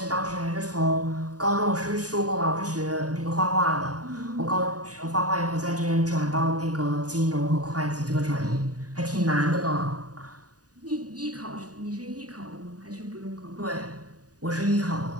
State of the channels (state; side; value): late; left; 0.68 ms